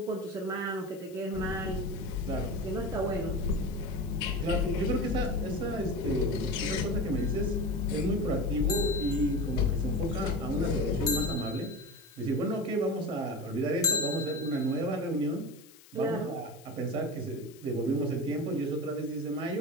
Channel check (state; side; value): noise; left; hiss, 23 dB below the sound